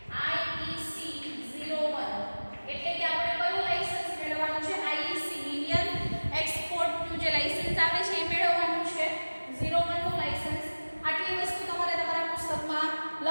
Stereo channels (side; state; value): both; inverted; correlation -1.00